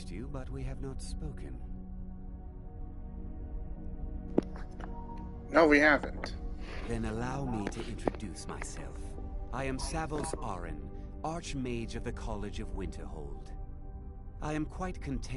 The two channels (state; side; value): identical; both; correlation 1.00